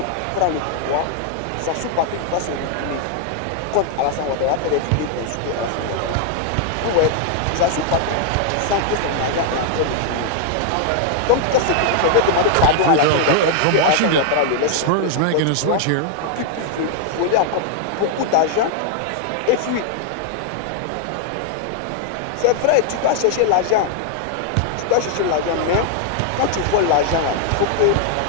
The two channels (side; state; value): both; different; correlation 0.00